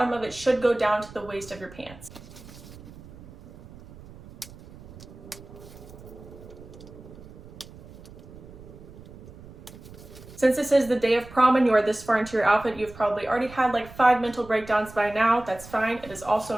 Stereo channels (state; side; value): noise; right; rumble, 18 dB below the sound